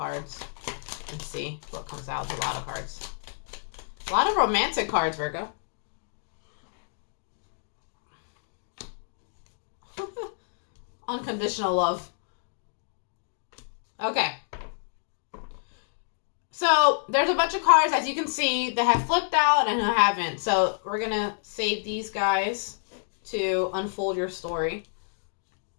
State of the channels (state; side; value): silent; right; digital silence